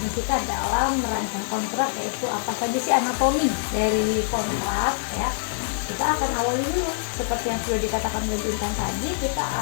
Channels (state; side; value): silent; right; digital silence